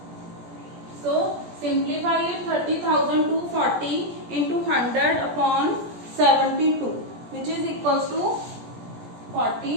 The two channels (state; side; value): late; left; 17 ms